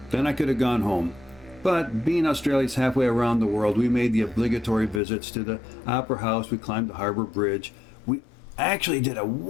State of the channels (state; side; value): drops out; right; at 5.0 s